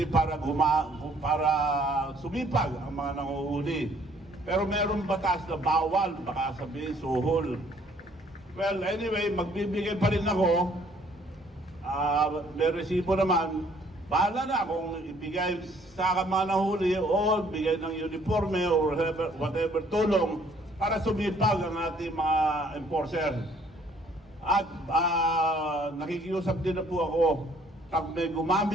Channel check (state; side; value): normal; both; correlation 0.61